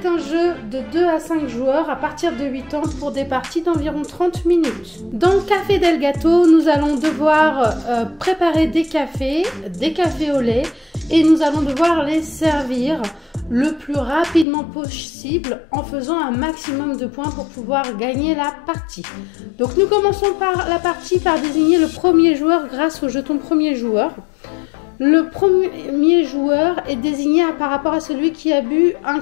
un jeu de 2 à 5 joueurs à partir de 8 ans pour des parties d'environ 30 minutes. Dans Café del Gato, nous allons devoir préparer des cafés au lait et nous allons devoir les servir le plus rapidement possible en faisant un maximum de points pour pouvoir gagner la partie. Donc nous commençons par la partie par désigner le premier joueur grâce au jeton premier joueur. Le premier joueur est désigné par rapport à celui qui a bu un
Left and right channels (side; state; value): right; drops out; at 14.5 s